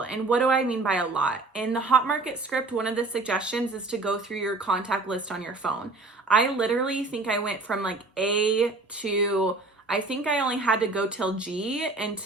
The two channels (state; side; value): quieter; left; 3.4 dB